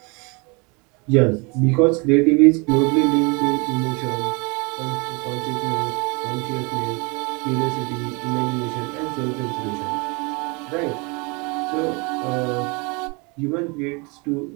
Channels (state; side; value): quieter; left; 29.7 dB